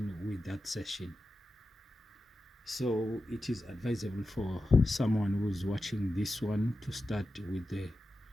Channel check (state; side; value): normal; both; correlation 0.92